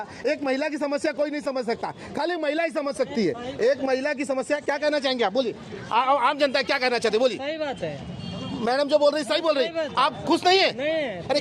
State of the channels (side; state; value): both; identical; correlation 1.00